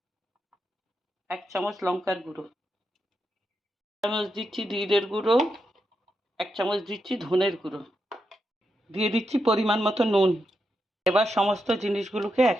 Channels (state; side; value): normal; both; correlation 0.85